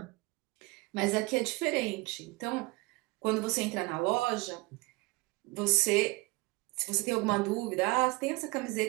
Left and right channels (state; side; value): quieter; left; 24.0 dB